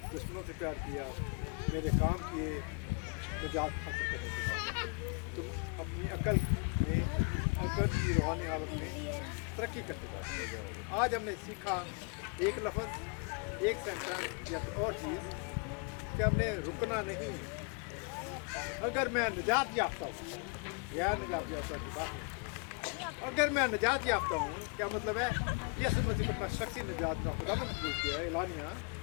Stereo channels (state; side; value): quieter; right; 35.5 dB